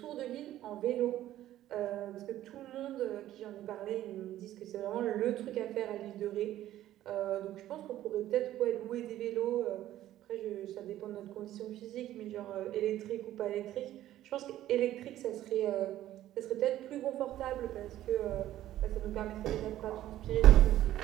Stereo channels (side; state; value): left; quieter; 13.4 dB